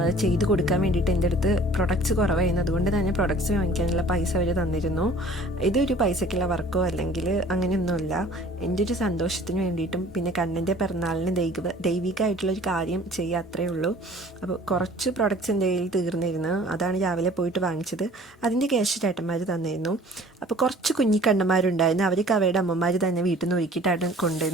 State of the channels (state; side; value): normal; both; correlation 0.50